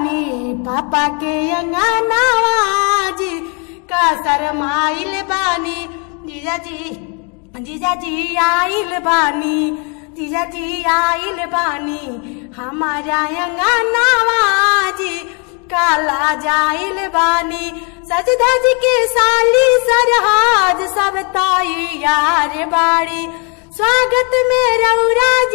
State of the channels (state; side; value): quieter; right; 35.7 dB